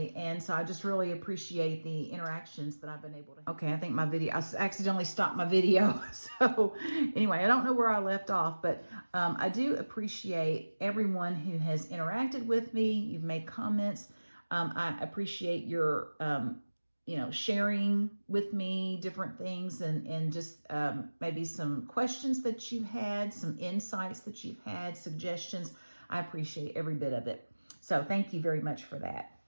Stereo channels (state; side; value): inverted; both; correlation -1.00